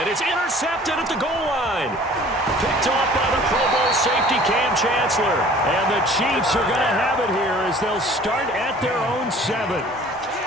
it's intercepted at the goal line. Picked off by the Pro Bowl safety Cam Chancellor. And the Chiefs are going to have it here as they'll start at their own 7.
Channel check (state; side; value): normal; both; correlation 0.50